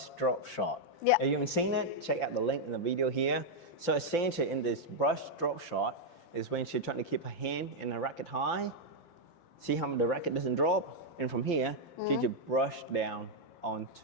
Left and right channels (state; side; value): late; right; 5.8 ms